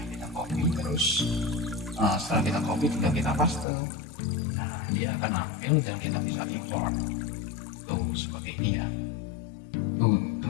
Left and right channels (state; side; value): drops out; right; at 3.7 s